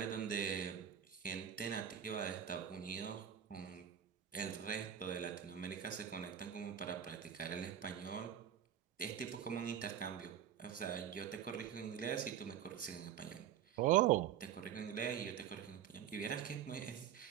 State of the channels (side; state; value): left; quieter; 9.4 dB